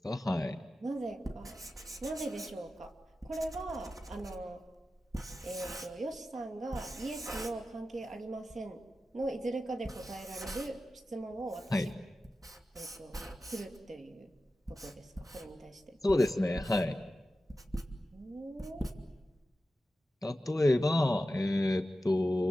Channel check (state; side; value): normal; both; correlation 0.93